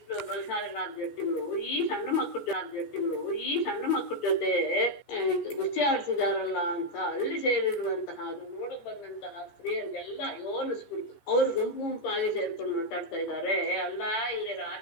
ಬಲಶಾಲಿಗಳಾದ ಜಟ್ಟಿಗಳು ಈ ಸಣ್ಣ ಮಕ್ಕಳ ಜೊತೆ ಗುಸ್ತಿ ಆಡ್ತಿದಾರಲ್ಲ ಅಂತ ಅಲ್ಲಿ ಸೇರಿರುವಂತಹ, ಅದು ನೋಡಕ್ ಬಂದಂತಹ ಸ್ತ್ರೀಯರಿಗೆಲ್ಲ ಯೋನಿಸ್ಬಿಡ್ತು. ಅವ್ರು ಗುಂಪಾಗಿ ಸೇರ್ಕೊಂಡು ಮಾತಾಡ್ತಾ ಇದ್ದಾರೆ. ಅಲ್ಲ, ಇಲ್ಲಿ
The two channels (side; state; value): right; late; 13 ms